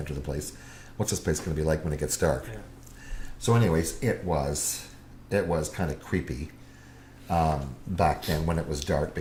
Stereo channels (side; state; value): both; identical; correlation 1.00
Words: the place, what's this place going to be like when it gets dark? Yeah. So anyways, it was kind of creepy back then when it was dark,